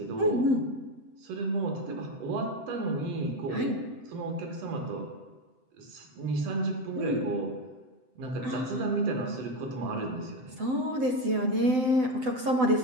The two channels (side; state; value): left; late; 7.8 ms